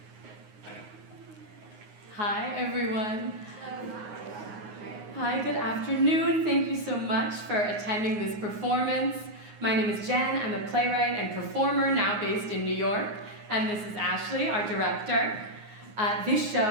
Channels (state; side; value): late; left; 9.5 ms